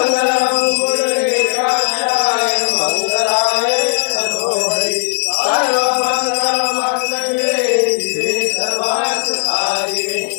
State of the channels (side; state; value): right; silent; digital silence